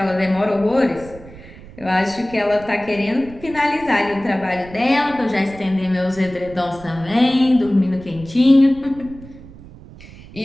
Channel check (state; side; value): noise; right; rumble, 18 dB below the sound